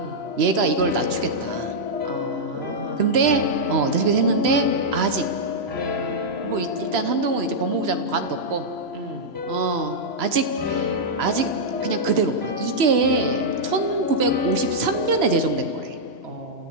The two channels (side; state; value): left; late; 3.0 ms